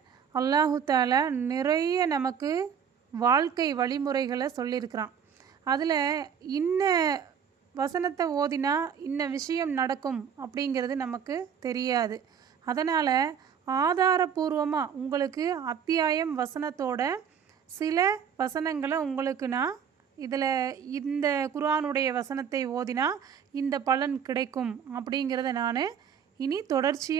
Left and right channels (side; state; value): left; quieter; 7.7 dB